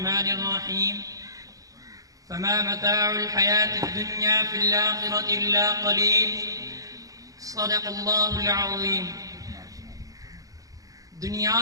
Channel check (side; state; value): left; late; 0.17 ms